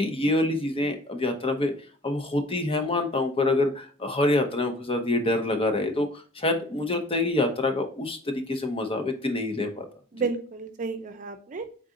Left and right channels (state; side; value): normal; both; correlation 0.49